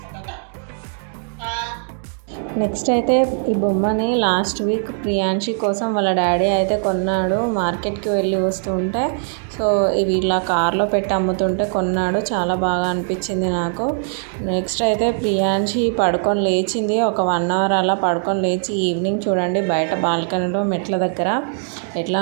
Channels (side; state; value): left; silent; digital silence